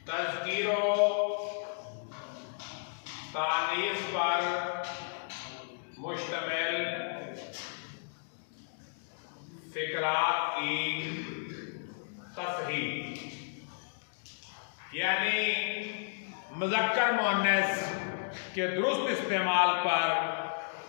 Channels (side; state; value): right; silent; digital silence